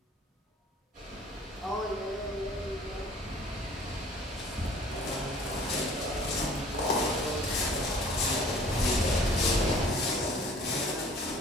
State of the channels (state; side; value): normal; both; correlation 0.52